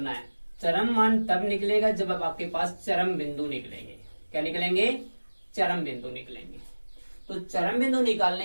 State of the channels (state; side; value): inverted; both; correlation -1.00